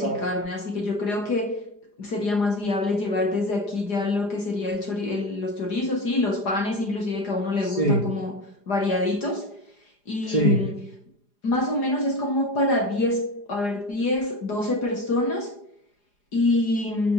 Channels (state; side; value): late; right; 4.9 ms